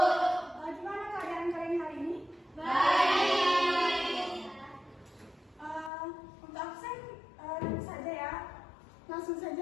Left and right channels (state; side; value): drops out; right; at 5.9 s